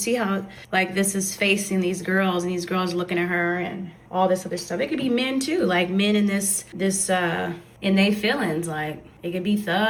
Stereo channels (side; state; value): both; identical; correlation 1.00